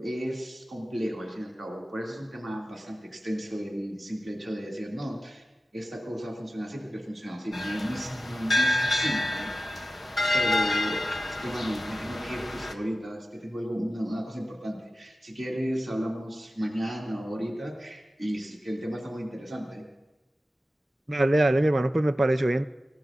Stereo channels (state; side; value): normal; both; correlation 0.94